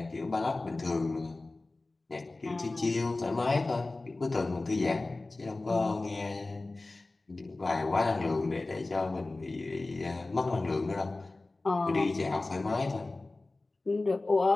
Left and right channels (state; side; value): quieter; right; 3.1 dB